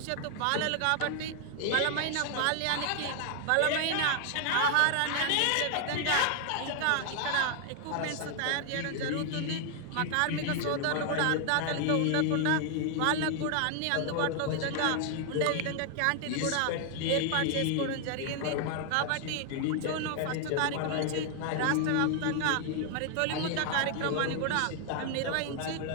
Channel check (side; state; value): both; different; correlation 0.00